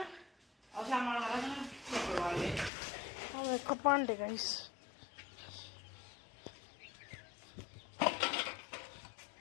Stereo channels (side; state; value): right; drops out; at 2.7 s